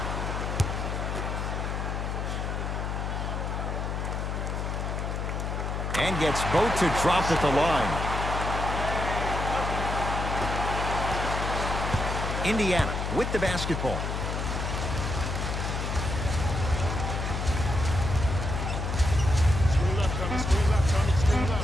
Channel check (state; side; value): noise; left; hum, 2 dB below the sound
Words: And gets both to drop at the line. Indiana with the basketball.